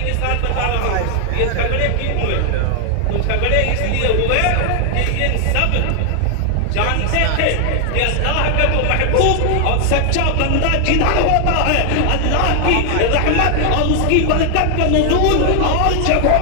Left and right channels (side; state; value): both; different; correlation 0.00